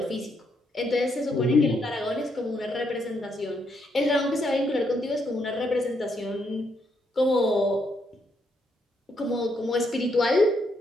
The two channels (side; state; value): both; normal; correlation 0.76